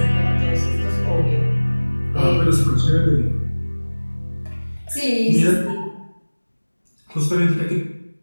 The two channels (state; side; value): inverted; both; correlation -1.00